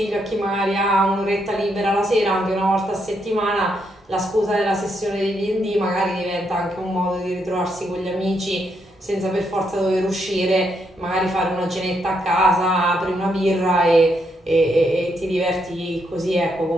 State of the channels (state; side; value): normal; both; correlation 0.78